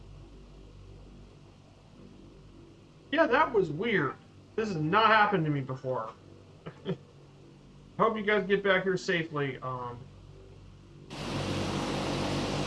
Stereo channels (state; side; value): identical; both; correlation 1.00